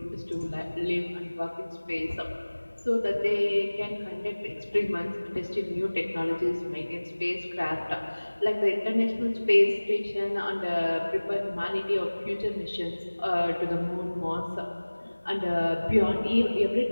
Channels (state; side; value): inverted; both; correlation -1.00